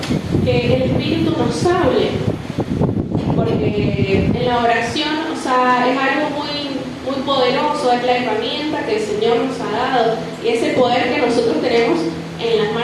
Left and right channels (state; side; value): identical; both; correlation 1.00